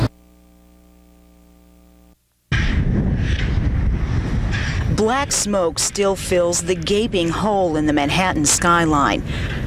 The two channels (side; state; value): both; identical; correlation 1.00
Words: Black smoke still fills the gaping hole in the Manhattan skyline.